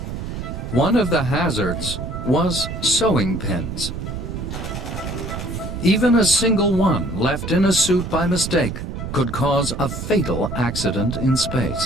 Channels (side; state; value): right; noise; rumble, 6 dB below the sound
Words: One of the hazards was sewing pins. Even a single one left in a suit by mistake could cause a fatal accident in